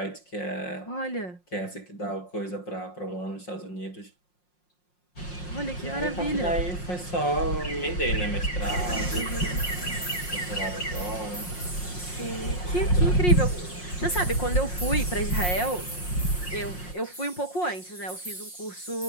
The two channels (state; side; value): late; right; 5.6 ms